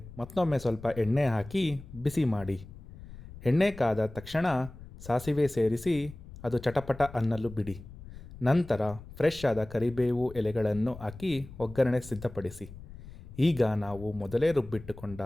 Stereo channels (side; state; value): left; noise; rumble, 16 dB below the sound